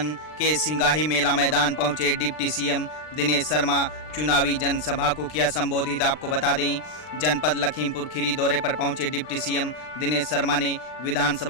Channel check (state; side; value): late; right; 39 ms